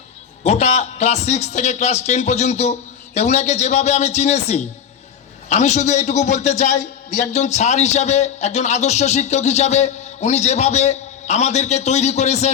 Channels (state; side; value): quieter; right; 8.3 dB